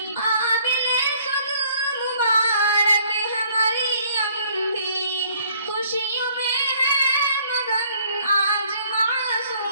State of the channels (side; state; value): both; inverted; correlation -0.62